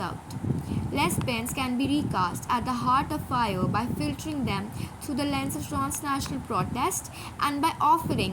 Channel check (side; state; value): both; identical; correlation 1.00